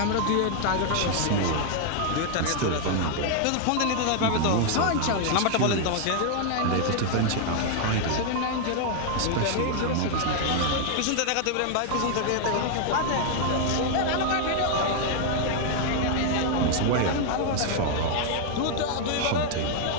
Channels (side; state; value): both; different; correlation 0.00